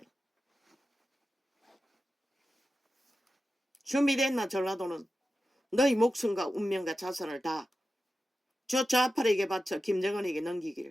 준비됐나 전라도는? 너희 목숨과 운명과 자산을 다 저 좌파에게 바쳐 김정은에게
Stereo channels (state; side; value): normal; both; correlation 0.92